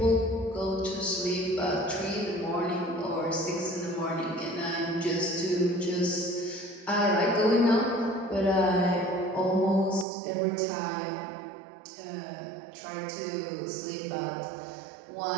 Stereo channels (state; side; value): drops out; left; at 10.1 s